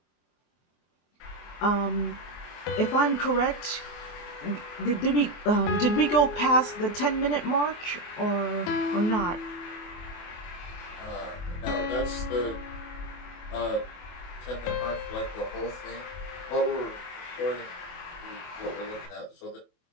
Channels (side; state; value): right; late; 24 ms